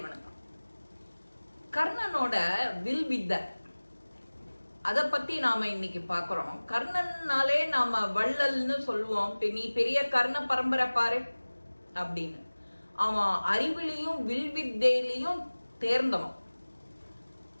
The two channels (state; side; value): inverted; both; correlation -1.00